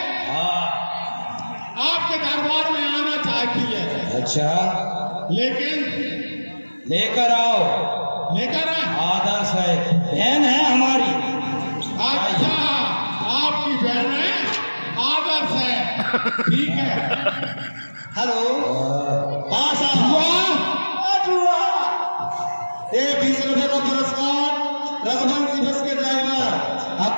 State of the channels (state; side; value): inverted; both; correlation -1.00